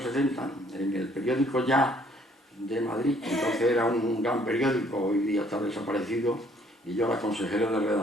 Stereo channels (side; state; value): both; normal; correlation 0.62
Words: en el periódico Ya de Madrid, entonces era un gran periódico, hoy día está desaparecido, y yo era consejero de